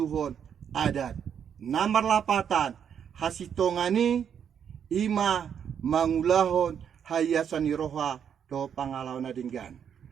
adat namar lapatan hasitongani ima mangulahon hayasani roha do pangalaw na dinggan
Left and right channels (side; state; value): left; quieter; 8.2 dB